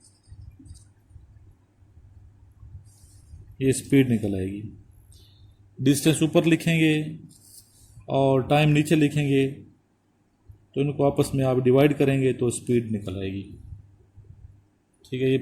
ये स्पीड निकल आएगी। डिस्टेंस ऊपर लिखेंगे और टाइम नीचे लिखेंगे, तो इनको आपस में आप डिवाइड करेंगे तो स्पीड निकल आएगी। ठीक है, ये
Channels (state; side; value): identical; both; correlation 1.00